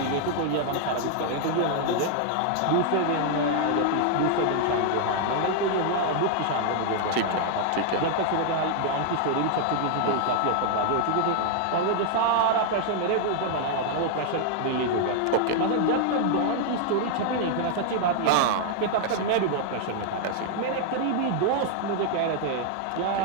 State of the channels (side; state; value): both; different; correlation 0.00